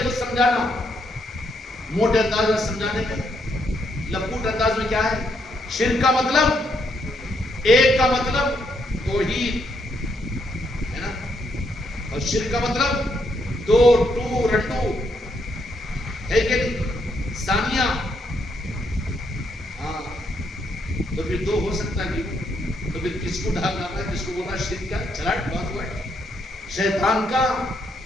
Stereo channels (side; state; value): both; normal; correlation 0.75